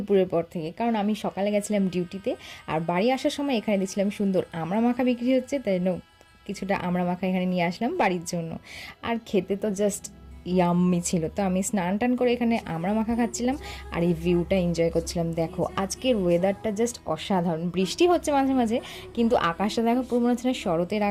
পর থেকে, কারণ আমি সকালে গেছিলাম ডিউটিতে, আর বাড়ি আসার সময় এখানে দেখছিলাম সুন্দর আমড়া মাখা বিক্রি হচ্ছে, তাই কিছুটা আমড়া মাখা এখানে নিয়ে আসলাম বাড়ির জন্য। আর খেতে তো জাস্ট ইয়াম্মি ছিল। তো আমি স্নান টান করে এখানে আমড়া মাখা খাচ্ছিলাম আর এই ভিউটা এনজয় করছিলাম। দেখো আজকের ওয়েদারটা জাস্ট অসাধারণ, বৃষ্টি হচ্ছে মাঝে মাঝে, কিন্তু আকাশটা দেখো পুরো মনে হচ্ছে না শরতের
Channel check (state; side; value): identical; both; correlation 1.00